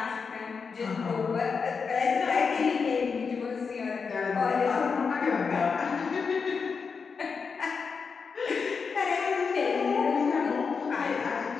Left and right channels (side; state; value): right; quieter; 5.4 dB